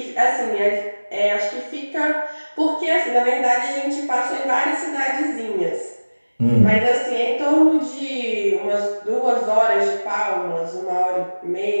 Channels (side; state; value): both; inverted; correlation -1.00